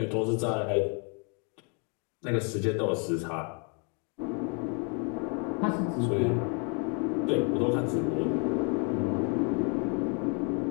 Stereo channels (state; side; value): quieter; right; 36.7 dB